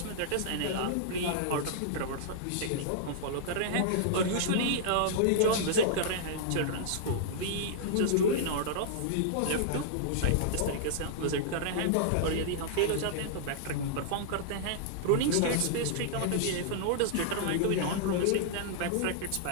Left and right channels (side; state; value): both; different; correlation -0.02